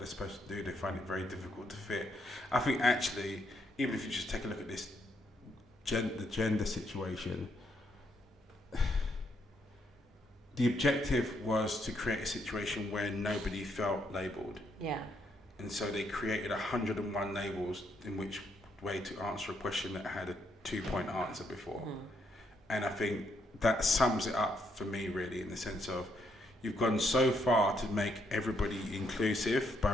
supposed to do, they find it very difficult to fit. I think actually, even if you just take a look at this the gender situation, the objective was to create a situation where nobody felt labelled. Yeah. And so they created 101 labels in which way to answer a question that had a 2-point answer before. And I think that sums it up for me, really, in the sense of you've gone so far to make everybody inclusive by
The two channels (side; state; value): both; normal; correlation 0.75